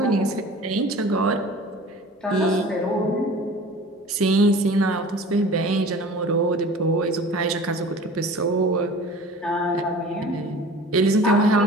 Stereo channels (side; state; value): both; normal; correlation 0.42